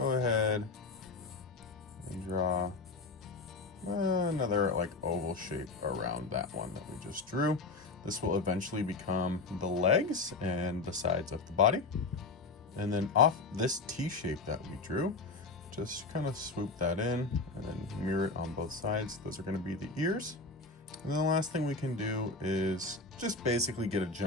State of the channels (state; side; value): quieter; right; 3.6 dB